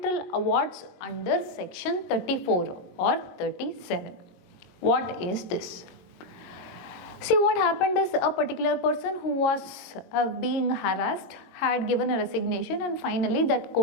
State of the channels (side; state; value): right; late; 22 ms